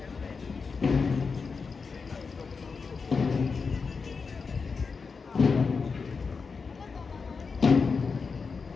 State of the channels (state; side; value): quieter; right; 5.0 dB